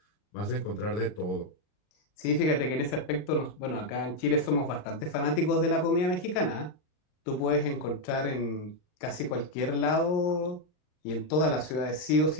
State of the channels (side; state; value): right; late; 39 ms